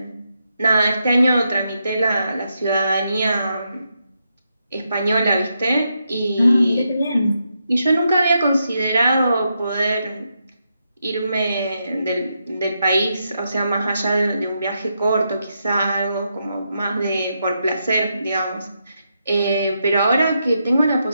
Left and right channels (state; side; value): inverted; both; correlation -0.83